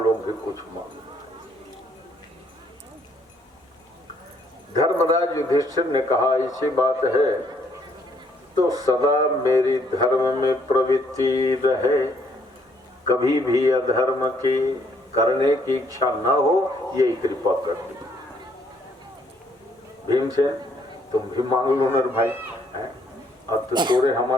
भी कुछ मांगो। धर्मराज युधिष्ठिर ने कहा ऐसी बात है तो सदा मेरी धर्म में प्रवृत्ति रहे, कभी भी अधर्म की करने की इच्छा न हो, यही कृपा कर दी। भीमसेन तुम भी मांग लो नर भाई, अब तो थोड़े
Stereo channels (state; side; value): normal; both; correlation 0.68